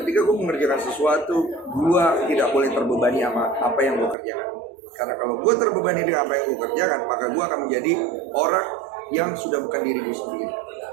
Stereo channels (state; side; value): drops out; left; at 4.2 s